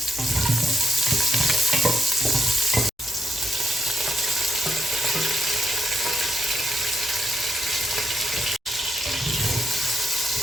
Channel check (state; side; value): normal; both; correlation 0.80